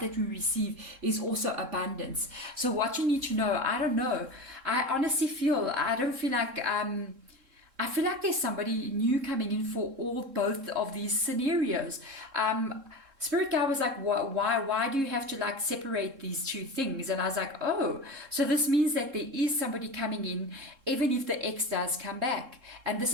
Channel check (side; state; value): left; late; 3.7 ms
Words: that we receive is also abundance. So what you need to know, I don't know, I honestly feel, I don't feel like I feel like there's somebody new coming in for both of these scenarios. Spirit guy was like, why do you have to like separate these two things? And I was like, oh, so this means that there is somebody coming in, even if the ex does come back. And this